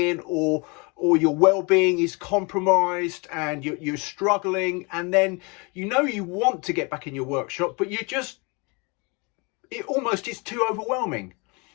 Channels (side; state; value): right; quieter; 29.9 dB